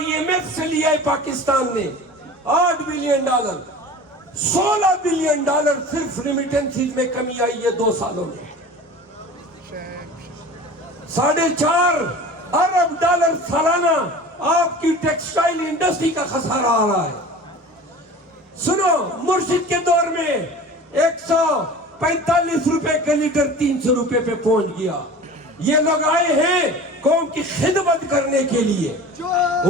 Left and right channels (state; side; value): normal; both; correlation 0.38